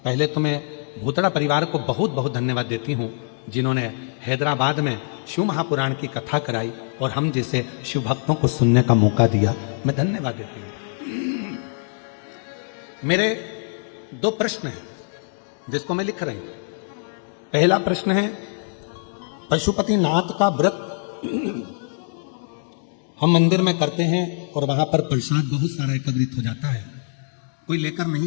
पहले तो मैं भूतड़ा परिवार को बहुत बहुत धन्यवाद देती हूं जिन्होंने हैदराबाद में शिव महापुराण की कथा कराई और हम जैसे शिव भक्तों को सुनने का मौका दिया, मैं धन्यवाद देती हूं। मेरे 2 प्रश्न हैं जिसको मैं लिख रही हूं। पहला प्रश्न है, पशुपतिनाथ का व्रत हम मंदिर में करते हैं और वहां पर प्रसाद बहुत सारा एकत्रित हो जाता है, कोई लेकर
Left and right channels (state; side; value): silent; right; digital silence